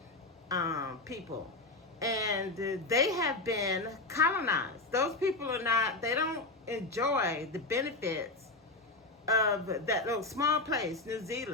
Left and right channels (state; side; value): quieter; right; 3.1 dB